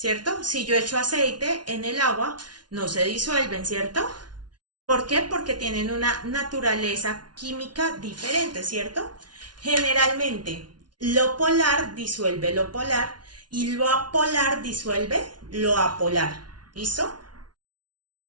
Si yo echo aceite en el agua, no se disuelven, ¿cierto? ¿Por qué? Porque tienen una naturaleza química diferente, ¿cierto? Generalmente, lo polar disuelve lo polar y lo apolar disuelve lo apolar. ¿Listo?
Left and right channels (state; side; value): late; left; 0.70 ms